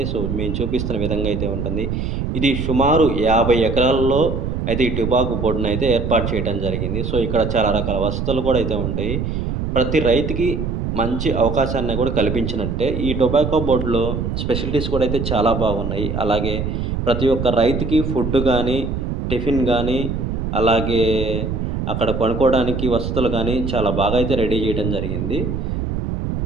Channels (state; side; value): noise; right; rumble, 2 dB below the sound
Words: సో, మేము చూపిస్తున్న విధంగా అయితే ఉంటుంది. ఇది సుమారు 50 ఎకరాల్లో అయితే ఈ టొబాకో బోర్డ్‌నైతే ఏర్పాటు చేయడం జరిగింది. సో, ఇక్కడ చాలా రకాల వసతులు కూడా అయితే ఉంటాయి. ప్రతి రైతుకి మంచి అవకాశాన్ని కూడా కల్పించినట్టే. ఈ టొబాకో బోర్డ్‌లో స్పెషాలిటీస్ కూడా అయితే చాలా బాగున్నాయి. అలాగే ప్రతి ఒక్క రైతుకి ఫుడ్ గానీ, టిఫిన్ గానీ, అలాగే అక్కడ పడుకోవడానికి వసతులు గానీ చాలా బాగా అయితే రెడీ చేయడం జరిగింది.